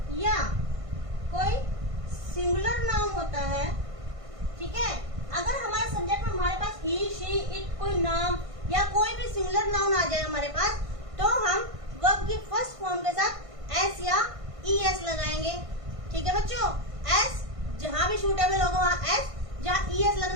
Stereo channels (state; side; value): late; left; 1.5 ms